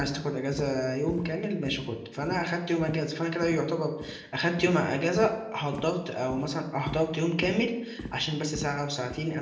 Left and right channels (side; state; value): both; identical; correlation 1.00